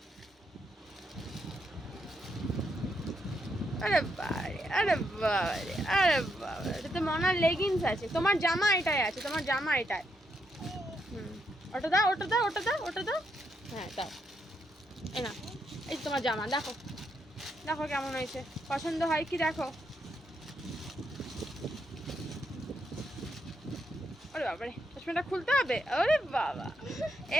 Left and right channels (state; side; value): normal; both; correlation 0.79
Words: আরে বাবারে, আরে বাবারে, আরে বাবা, এটাতে মনার লেগিংস আছে। তোমার জামা এটাই আছে, তোমার জামা এটাই। ওটা দাও, ওটা দাও, ওটা দাও, ওটা দাও। হ্যাঁ দাও। এই না, এই তোমার জামা দেখো, দেখো কেমন হয়েছে, পছন্দ হয় কি দেখো। ওরে বাবারে, চশমাটা খুলতে হবে? ওরে বাবা,